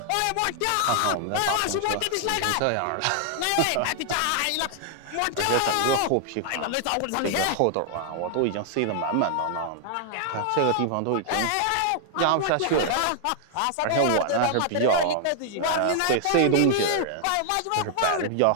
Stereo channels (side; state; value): both; different; correlation 0.00